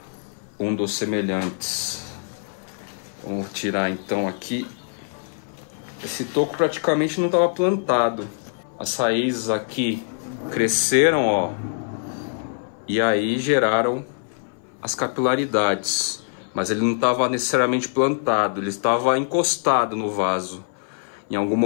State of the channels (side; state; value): right; silent; 59 dB below the other